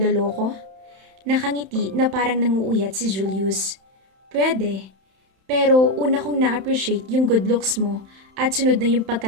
Nakangiti na parang nanguuyat si Julius. Pwede. Pero una kong na-appreciate yung good looks mo at sunod na yung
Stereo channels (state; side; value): late; left; 31 ms